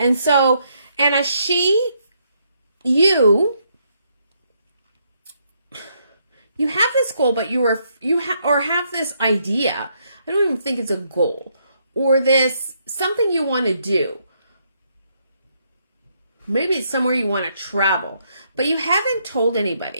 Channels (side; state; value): both; inverted; correlation -0.74